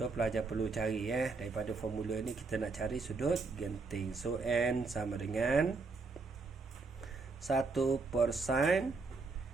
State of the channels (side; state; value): left; quieter; 4.1 dB